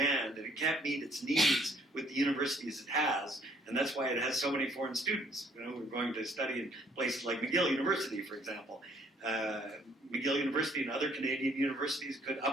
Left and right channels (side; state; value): both; normal; correlation 0.63